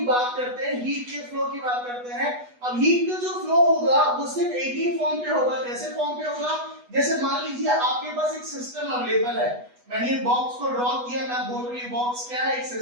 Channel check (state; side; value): late; left; 8.2 ms